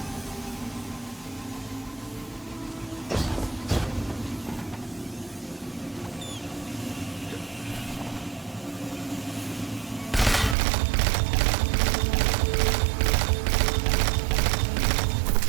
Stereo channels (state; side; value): drops out; left; at 10.6 s